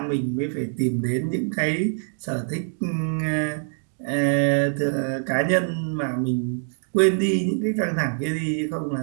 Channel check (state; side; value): silent; left; 62 dB below the other